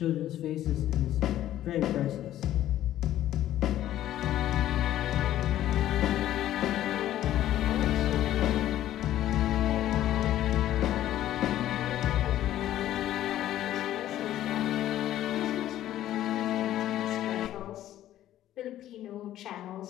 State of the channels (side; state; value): right; quieter; 12.9 dB